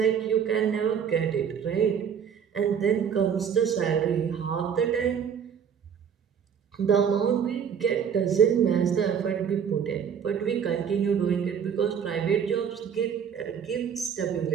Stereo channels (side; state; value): left; quieter; 7.6 dB